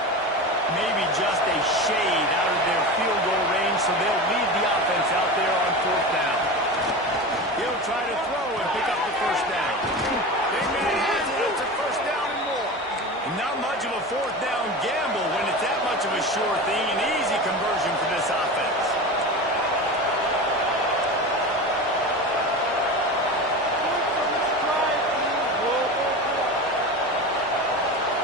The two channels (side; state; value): both; normal; correlation 0.28